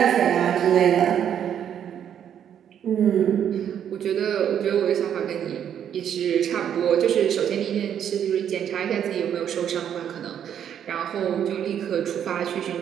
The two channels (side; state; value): left; quieter; 9.2 dB